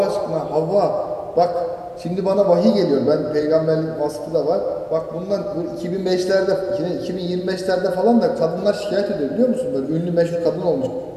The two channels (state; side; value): identical; both; correlation 1.00